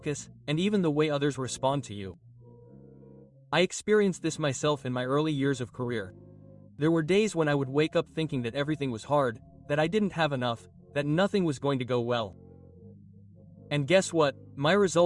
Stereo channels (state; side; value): identical; both; correlation 1.00